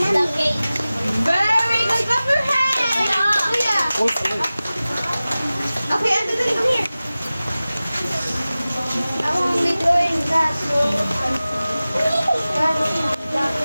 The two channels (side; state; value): both; inverted; correlation -0.97